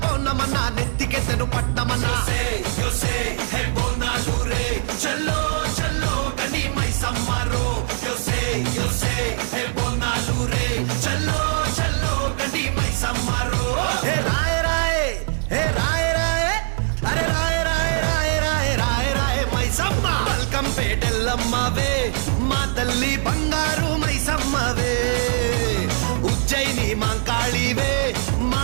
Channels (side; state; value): left; silent; digital silence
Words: పౌర్ణమన్న నెత్తికెత్తెను పట్టమన్న చల్లో చల్లో కని మైసమ్మరో బోనాలు రే చల్లో చల్లో కని మైసమ్మరో హే రాయ రాయ హే రాయ రాయ అరే రాయ రాయ రాయ రాయ రాయ రాయ మైసమ్మ బల్కం పేటెల్లమ్మవే మా తల్లి బంగారు మైసమ్మవే ఉజ్జయిని మాంకాళివే